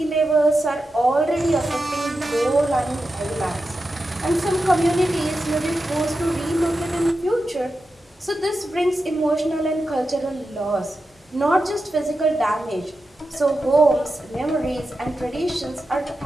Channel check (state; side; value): normal; both; correlation 0.90